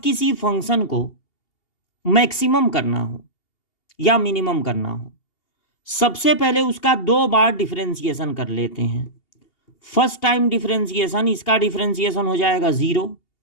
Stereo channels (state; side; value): late; right; 2.8 ms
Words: फंक्शन को मैक्सिमम करना हो या मिनिमम करना हो, सबसे पहले उसका 2 बार डिफरेंशिएशन कर लेते हैं। फर्स्ट टाइम डिफरेंशिएशन, इसका डिफरेंशिएशन हो जाएगा 0